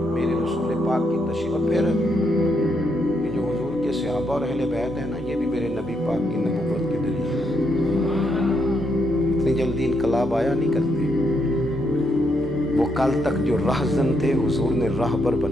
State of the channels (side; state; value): both; normal; correlation 0.78